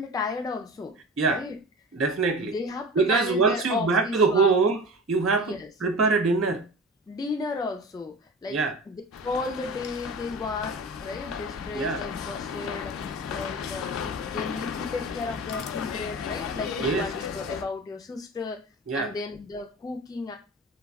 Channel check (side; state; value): both; normal; correlation 0.33